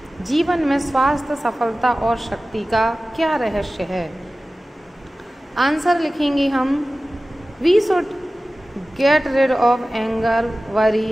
जीवन में स्वास्थ्य, सफलता और शक्ति का क्या रहस्य है। आंसर लिखेंगे हम, we should get rid of anger,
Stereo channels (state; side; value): normal; both; correlation 0.96